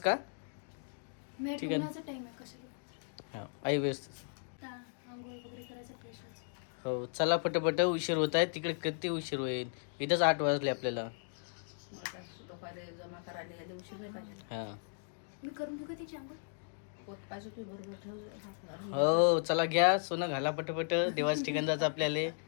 का? ठीक आहे, आई व्यवस्थित. हो चला पटपट, उशीर होत आहे. तिकडे किती उशीर होईल, इथंच 8 वाजले आपल्याला. हा हो चला, घ्या सोनं घाला पटपट. देवाच्या ठिकाणी जायचं आपल्याला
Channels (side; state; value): right; silent; digital silence